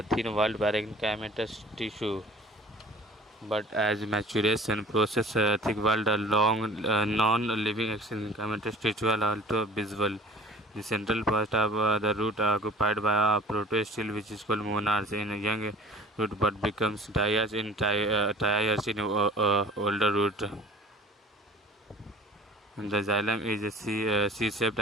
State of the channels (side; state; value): both; normal; correlation 0.47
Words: thin-walled parenchymatous tissue. But as maturation process, thick-walled, long, non-living parenchymatous tissue are also visible. The central part of the root occupied by a protostele, which is called monarch in a young root, but becomes diarch in triarch in older root. And the xylem is a C-shaped